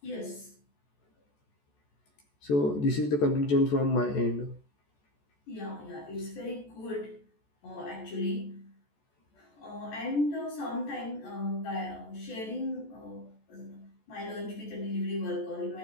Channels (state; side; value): late; right; 14 ms